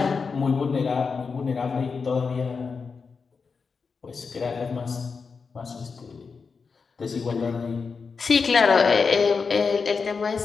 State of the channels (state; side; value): quieter; right; 5.1 dB